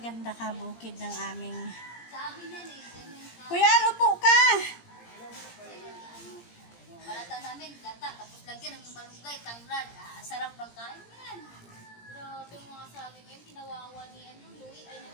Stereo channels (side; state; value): right; late; 17 ms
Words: kabukid ng aming... Kuya, lupo ka! Balata namin, gata, tapos lagyan ng malunggay, tanglad. Sarap ng kain yan. Grabe mga sabi ngayon, kinawawa ni Louie ay nang